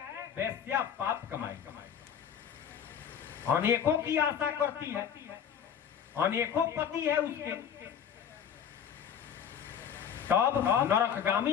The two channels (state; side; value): quieter; right; 8.4 dB